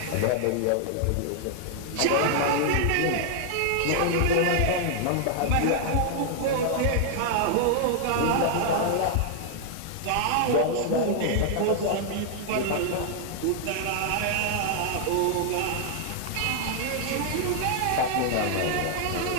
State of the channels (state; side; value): different; both; correlation 0.00